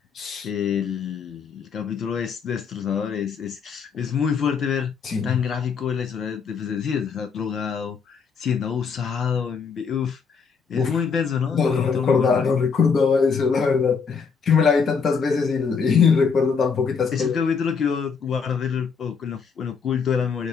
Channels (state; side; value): quieter; right; 5.8 dB